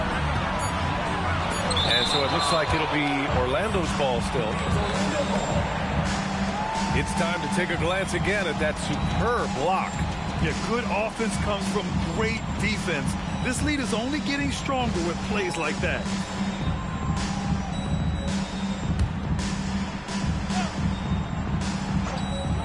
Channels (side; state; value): both; identical; correlation 1.00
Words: And so it looks like it'll be Orlando's ball still. It's time to take a glance again at that superb block. Yeah, good offense comes from great defense. This lead is only getting stronger with plays like that.